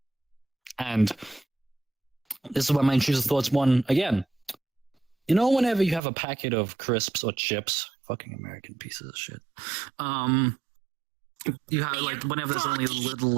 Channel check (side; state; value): left; drops out; at 6.0 s